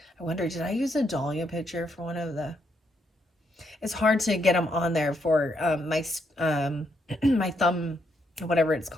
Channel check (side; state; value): both; normal; correlation 0.76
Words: I wonder, did I use a dahlia picture for one of the... It's hard to get them on there for my my thumb, whatever it's